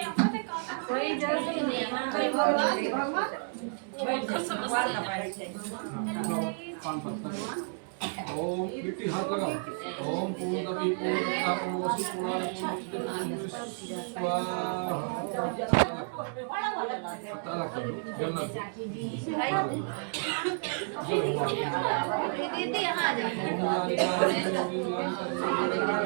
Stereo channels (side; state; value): left; silent; 57 dB below the other